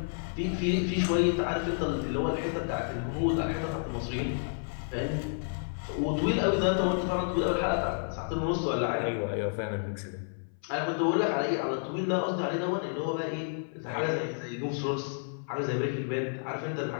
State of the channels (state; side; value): silent; right; 57 dB below the other